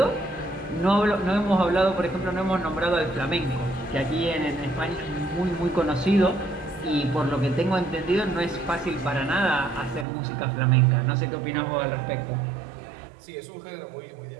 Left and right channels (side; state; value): left; drops out; at 10.1 s